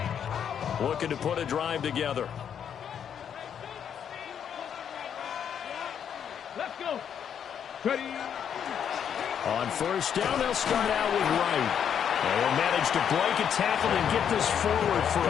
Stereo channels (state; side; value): quieter; right; 8.4 dB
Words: line. Looking to put a drive together. Let's go. Ready. On first down, they'll start out with Wright. And they'll manage to break a tackle and get this forward for